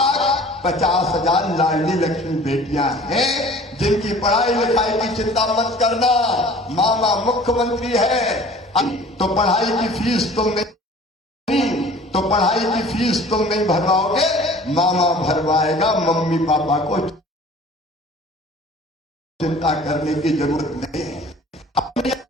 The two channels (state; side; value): normal; both; correlation 0.47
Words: 50,000 लाडली लक्ष्मी बेटियां हैं, जिनकी पढ़ाई लिखाई की चिंता मत करना। मामा मुख्यमंत्री है तो पढ़ाई की फीस तुम नहीं भरवाओगे, मामा भरवाएगा। मम्मी पापा को चिंता करने की जरूरत नहीं है। अपनी